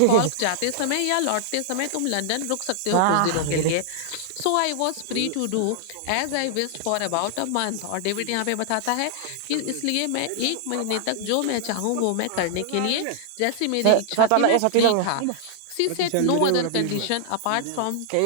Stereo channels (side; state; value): both; different; correlation -0.01